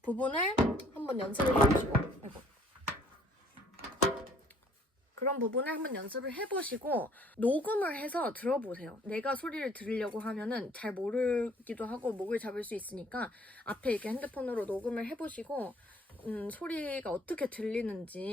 부분을 한번 연습을 해보시고 그런 부분을 한번 연습을 해보시고 녹음을 해서 들어보세요. 내가 소리를 들으려고 하면은 잘 모르기도 하고 목을 잡을 수 있으니까 앞에 이렇게 핸드폰으로 녹음을 해보시고 소리가 어떻게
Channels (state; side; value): normal; both; correlation 0.58